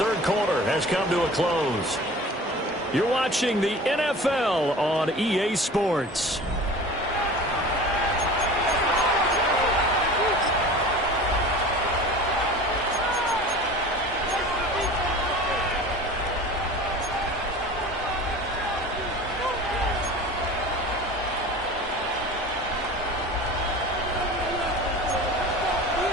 quarter has come to a close. You're watching the NFL on EA Sports.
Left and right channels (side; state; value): both; normal; correlation 0.39